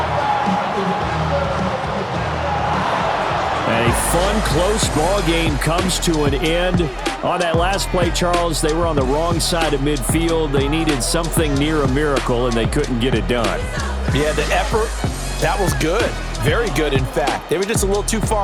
A fun, close ball game comes to an end. On that last play, Charles, they were on the wrong side of midfield. They needed something near a miracle, and they couldn't get it done. Yeah, the effort, that was good. Very good, in fact. They were just a little too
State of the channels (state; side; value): identical; both; correlation 1.00